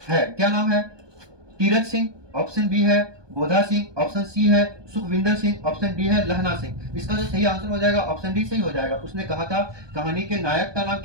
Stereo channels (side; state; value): left; late; 1.2 ms